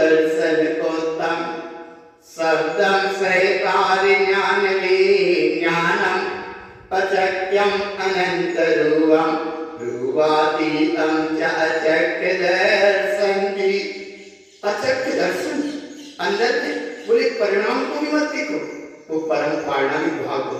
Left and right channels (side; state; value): both; identical; correlation 1.00